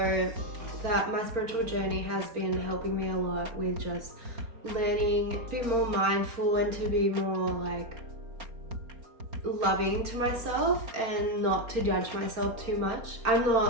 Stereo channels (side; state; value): left; late; 4.3 ms